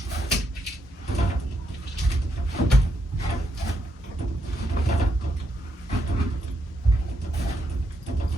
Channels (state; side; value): normal; both; correlation 0.79